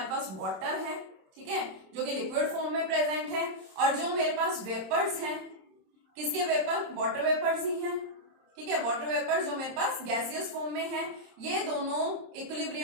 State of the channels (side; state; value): left; late; 26 ms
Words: पास वाटर है, ठीक है, जो कि लिक्विड फॉर्म में प्रेजेंट है, और जो मेरे पास वेपर्स हैं, किसके वेपर, वाटर वेपर्स ही हैं, ठीक है। वाटर वेपर्स जो मेरे पास गैसियस फॉर्म में है, ये दोनों